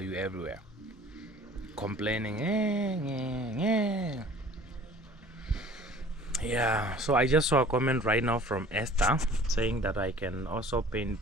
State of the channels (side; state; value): both; normal; correlation 0.49